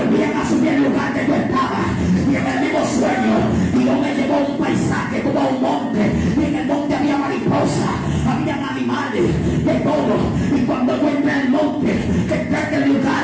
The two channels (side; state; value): both; identical; correlation 1.00